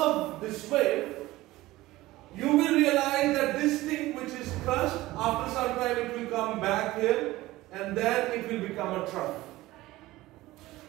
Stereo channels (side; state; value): left; quieter; 17.8 dB